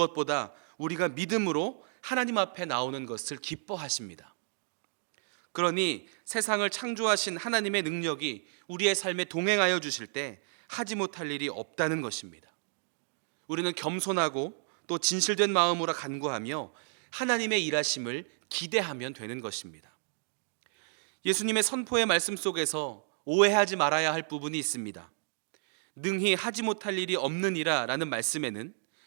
우리가 믿음으로 하나님 앞에 나오는 것을 기뻐하십니다. 그러니 세상을 창조하신 하나님의 능력이 우리의 삶에 동행하여 주실 때 하지 못할 일이 없다는 것입니다. 우리는 겸손하고 또 진실된 마음으로 간구하며 하나님의 일하심을 기대하면 되는 것입니다. 예수님의 선포의 말씀 속에서 오해하지 말아야 할 부분이 있습니다. 능히 하지 못할 일이 없느니라 라는 말씀에는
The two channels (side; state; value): left; silent; digital silence